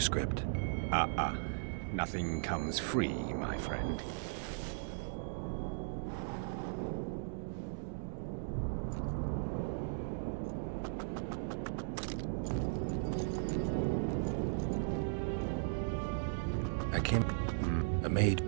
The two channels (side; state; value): left; silent; digital silence